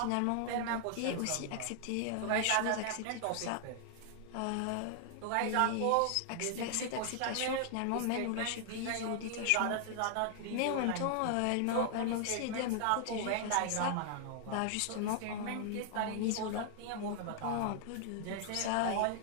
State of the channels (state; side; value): different; both; correlation 0.00